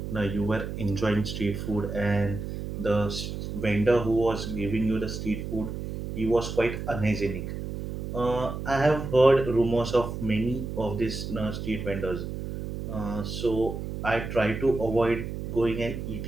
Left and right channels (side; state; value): right; noise; hum, 6 dB below the sound